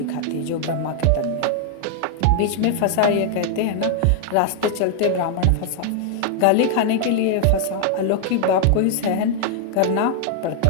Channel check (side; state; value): both; different; correlation 0.00